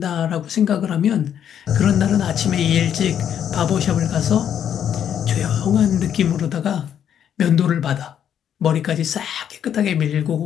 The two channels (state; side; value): quieter; right; 9.2 dB